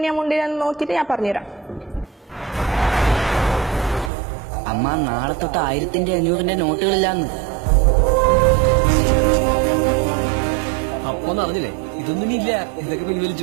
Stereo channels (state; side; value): drops out; left; at 4.1 s